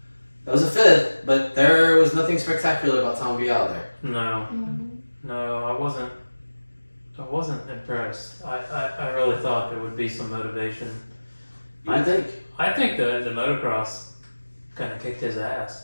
That was a 5th, but there was nothing spectacular about Tom Biao there. No. No, I wasn't impressed. I really thought there would be some motivation. I think. I think the motocross kind of kicked his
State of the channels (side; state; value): both; inverted; correlation -1.00